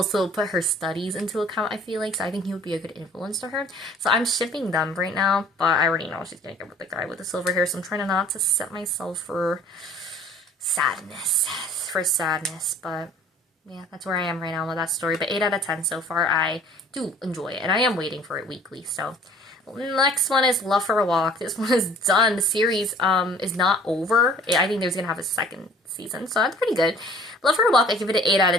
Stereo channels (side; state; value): both; normal; correlation 0.52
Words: put her studies into account, I feel like, so I think he would be a good influence to her. So I'm shipping them right now, but I already know she's gonna get with the guy with the silver hair, so I'm trying not to set myself for sadness, but yeah, that's where I am right now with that story. But 8 out of 10 so far. I do enjoy it, and I am waiting for it weekly, so. Next one is Love for a Walk. This one is done. The series is not over. I think there's gonna have a second season, so that's pretty good. Love for a Walk, I give it an 8 out